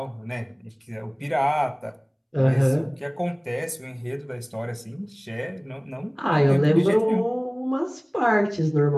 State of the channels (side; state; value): both; identical; correlation 1.00